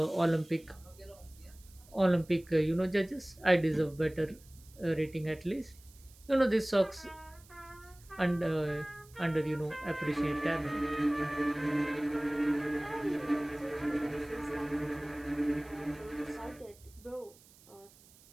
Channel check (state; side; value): noise; right; hiss, 25 dB below the sound